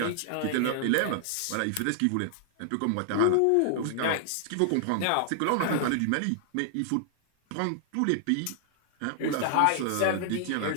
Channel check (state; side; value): different; both; correlation -0.01